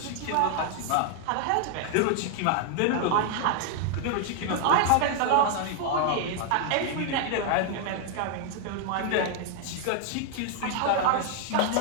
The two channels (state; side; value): different; both; correlation 0.00